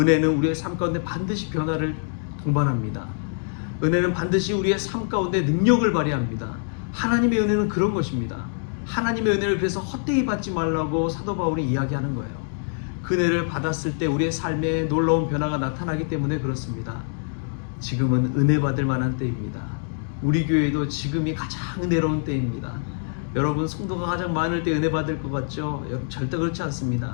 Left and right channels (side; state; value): right; silent; digital silence